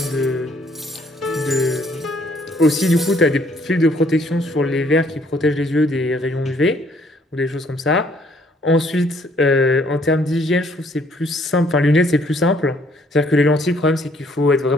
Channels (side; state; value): both; normal; correlation 0.65